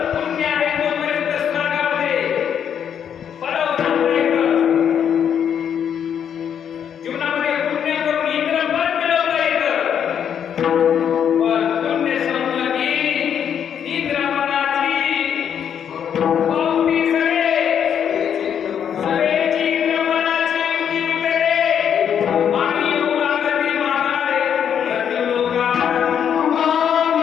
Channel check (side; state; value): right; quieter; 8.5 dB